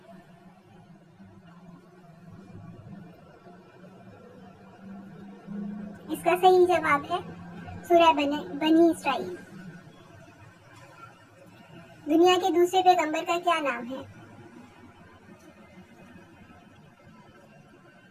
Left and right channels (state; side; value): identical; both; correlation 1.00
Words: इसका सही जवाब है सूरह बनी इसराइल। दुनिया के दूसरे पैगंबर का क्या नाम है?